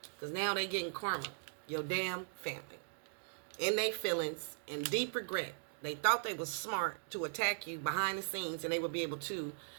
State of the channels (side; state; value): left; silent; digital silence